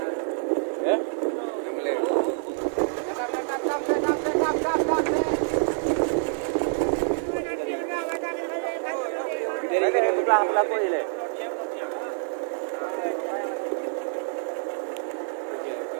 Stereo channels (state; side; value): silent; left; digital silence